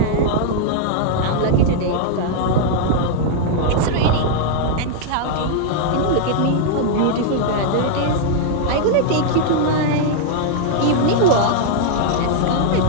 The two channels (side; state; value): both; different; correlation -0.01